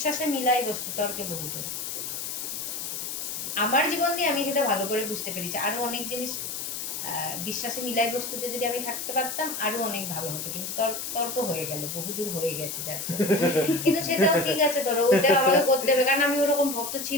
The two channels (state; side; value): noise; left; hiss, 5 dB below the sound